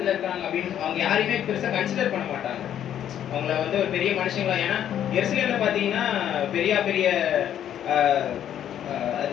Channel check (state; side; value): quieter; right; 10.3 dB